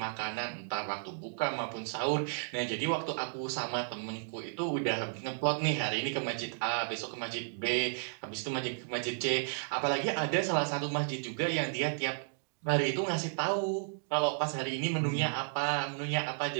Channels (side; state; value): left; silent; digital silence